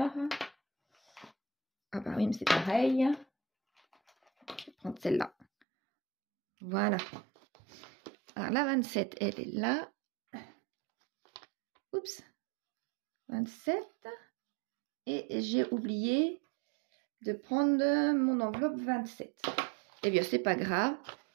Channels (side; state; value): left; drops out; at 5.5 s